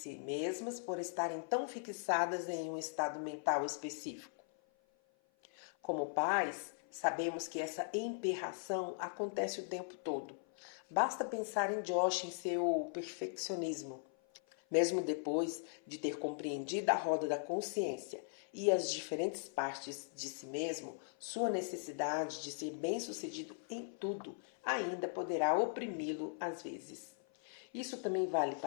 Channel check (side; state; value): right; silent; 52 dB below the other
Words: mesmas por estarem tão fixadas em um estado mental específico. Como pais, sabemos que essa emperração acontece o tempo todo. Basta pensar em Josh em seu perfeccionismo. Mesmo depois de ter compreendido a roda da consciência e as diferentes partes de si mesmo, sua necessidade de ser bem-sucedido em tudo ainda poderá oprimi-lo às vezes. Isso também vale